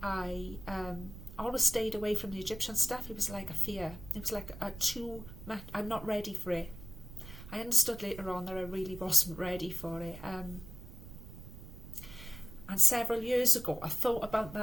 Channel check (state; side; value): noise; right; rumble, 14 dB below the sound